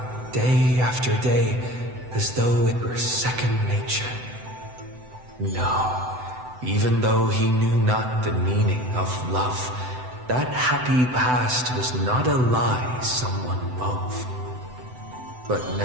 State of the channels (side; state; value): left; late; 7.9 ms